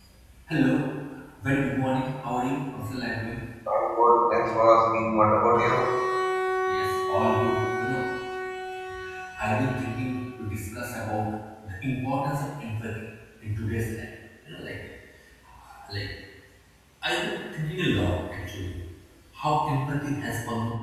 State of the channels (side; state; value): both; identical; correlation 1.00